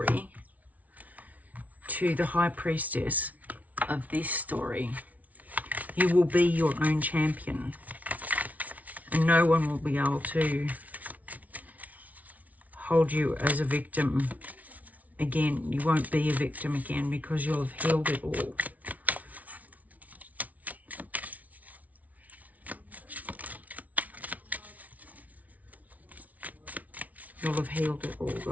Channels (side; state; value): left; late; 0.072 ms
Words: to the High Priestess of this story. You will be your own champion. And no one will be able to hold you as a victim again. You won't be a victim again because you'll have healed it all. You'll have healed it all.